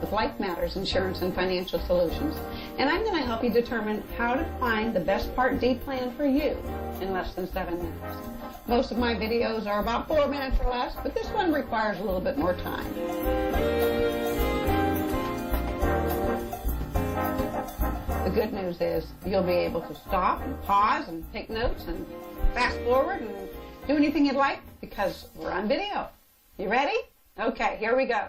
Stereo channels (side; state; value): both; identical; correlation 1.00